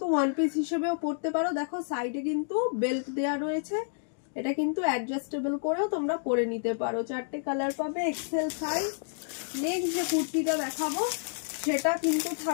ওয়ান পিস হিসেবেও পরতে পারো। দেখো সাইডে কিন্তু বেল্ট দেয়া রয়েছে, এটা কিন্তু অ্যাডজাস্টেবল করেও তোমরা পরে নিতে পারো। 4টে কালার পাবে, এক্সেল সাইজ। নেক্সট যে কুর্তিটা দেখাবো সেটা কিন্তু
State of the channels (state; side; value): silent; right; digital silence